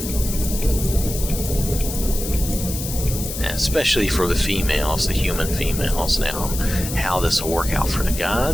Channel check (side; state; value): left; noise; hiss, 7 dB below the sound